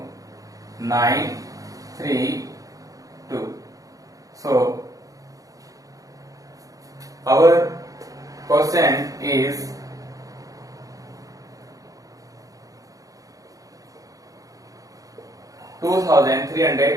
9 3 2. So our quotient is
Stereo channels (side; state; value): left; late; 0.17 ms